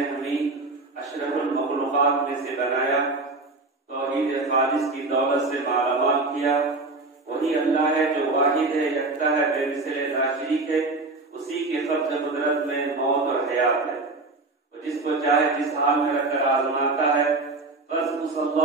हमें अशरफुल मखलूक़ात में से बनाया, तौहीद खालिस की दौलत से मालामाल किया। वही अल्लाह है जो वाहिद है, यकता है, बेमिसाल नाशरीक है। उसी के क़ब्ज़ कुदरत में मौत और हयात है। वो जिसको चाहे जिस हाल में रखकर आज़माता है। बस उस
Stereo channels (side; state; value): left; quieter; 3.4 dB